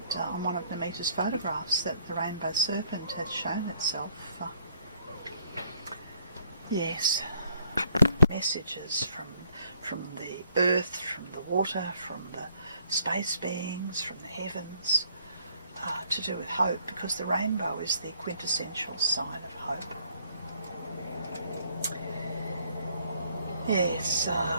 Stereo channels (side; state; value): both; inverted; correlation -0.65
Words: on one of Namita's photographs that the rainbow serpent had shown itself. Yes, messages from the earth, from the water, from the space beings, from the heavens, to do with hope, because the rainbow is the quintessential sign of hope. Yes,